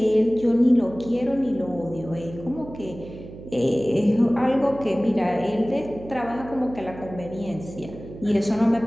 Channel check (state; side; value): noise; right; hum, 15 dB below the sound